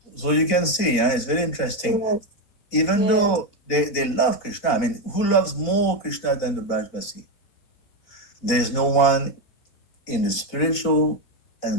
So you can see, yeah, it's very interesting. Yes. Even Yes. though they love Krishna, I mean, who loves more Krishna than the Brajbasi? There's no one in the spiritual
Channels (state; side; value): late; right; 4.4 ms